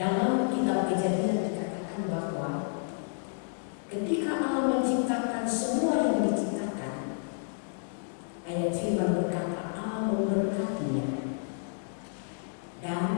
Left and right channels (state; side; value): silent; right; digital silence